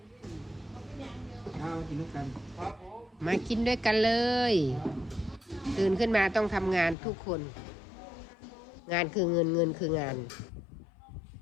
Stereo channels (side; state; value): right; drops out; at 7.0 s